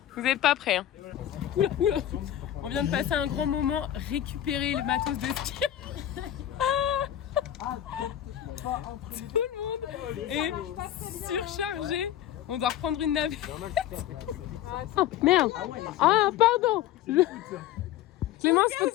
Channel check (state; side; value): quieter; right; 11.8 dB